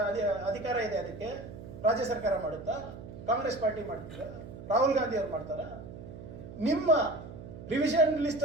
ಅಧಿಕಾರ ಇದೆ? ಅದಕ್ಕೆ ರಾಜ್ಯ ಸರ್ಕಾರ ಮಾಡುತ್ತಾ? ಕಾಂಗ್ರೆಸ್ ಪಾರ್ಟಿ ಮಾಡ್ತೀರಾ? ರಾಹುಲ್ ಗಾಂಧಿ ಅವ್ರು ಮಾಡ್ತಾರ? ನಿಮ್ಮ ರಿವಿಷನ್ ಲಿಸ್ಟ್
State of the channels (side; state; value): right; noise; hum, 13 dB below the sound